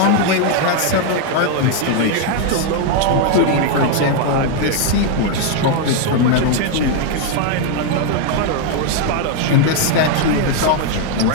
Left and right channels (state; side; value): different; both; correlation 0.01